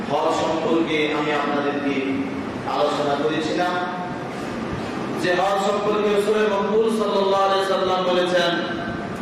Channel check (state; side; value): identical; both; correlation 1.00